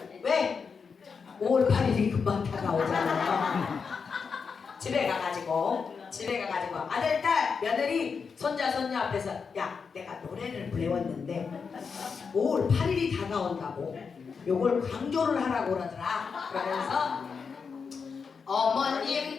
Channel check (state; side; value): quieter; right; 5.6 dB